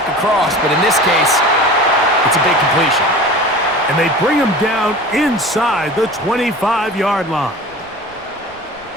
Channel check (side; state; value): both; normal; correlation 0.37